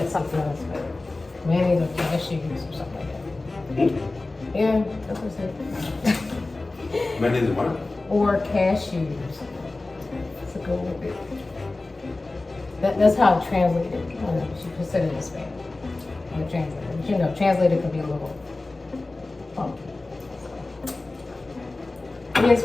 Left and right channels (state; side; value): quieter; right; 3.1 dB